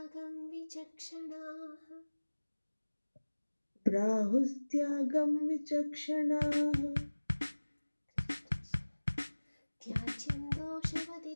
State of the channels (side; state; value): both; inverted; correlation -1.00